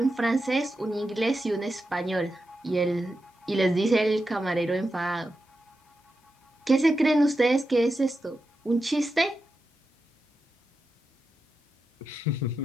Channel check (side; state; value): both; normal; correlation 0.89